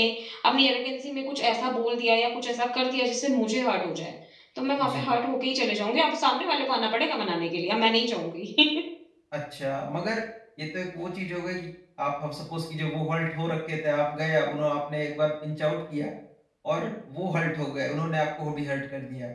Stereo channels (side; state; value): both; identical; correlation 1.00